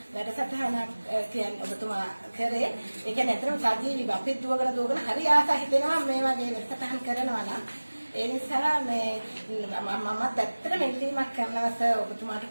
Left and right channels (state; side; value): inverted; both; correlation -1.00